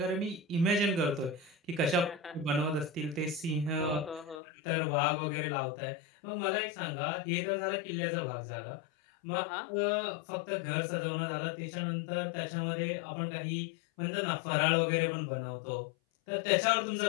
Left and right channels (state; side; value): drops out; right; at 4.4 s